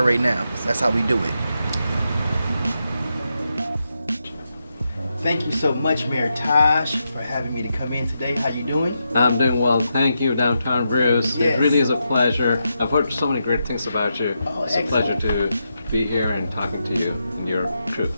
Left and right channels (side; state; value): both; inverted; correlation -0.85